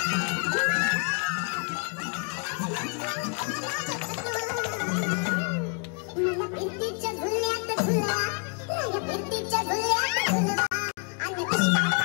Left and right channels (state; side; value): quieter; right; 37.9 dB